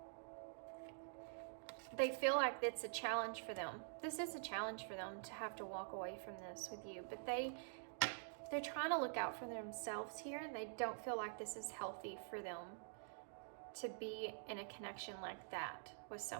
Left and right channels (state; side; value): silent; left; digital silence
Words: They feel like it's a challenge for them. This is a challenge for them to have to walk away from this with you, but they're trying to look out for themselves here, and they don't feel like this is healthy for them to be in a connection like that with